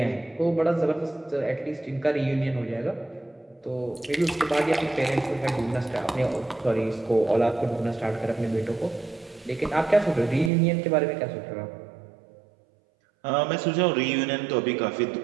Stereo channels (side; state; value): left; drops out; at 10.5 s